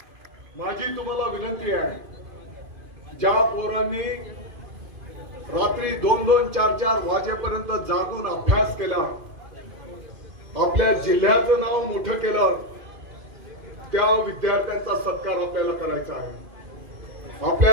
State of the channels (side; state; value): left; late; 2.5 ms